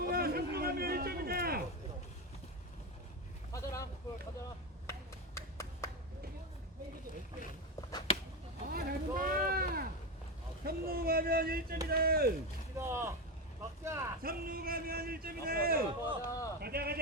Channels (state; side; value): normal; both; correlation 0.14